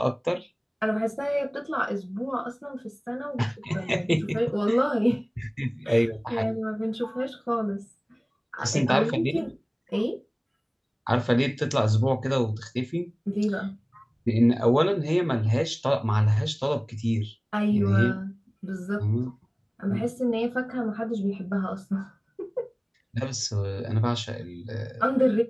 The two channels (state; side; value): identical; both; correlation 1.00